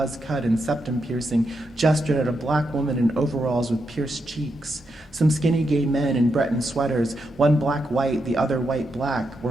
cut and septum piercing, gestured at a black woman in overalls with pierced cheeks. Some skinny gay men in Breton sweaters, one black-white, the other white-black,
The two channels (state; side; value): normal; both; correlation 0.83